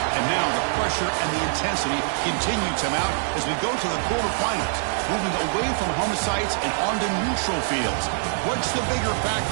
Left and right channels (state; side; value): silent; left; digital silence